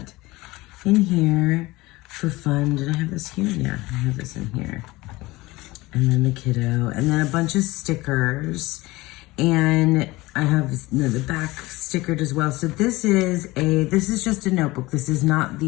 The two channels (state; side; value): quieter; right; 20.5 dB